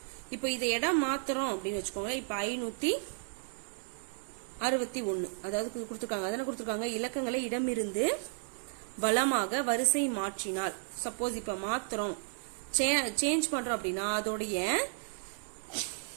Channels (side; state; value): left; silent; digital silence